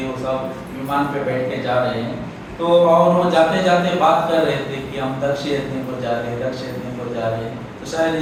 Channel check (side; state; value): both; identical; correlation 1.00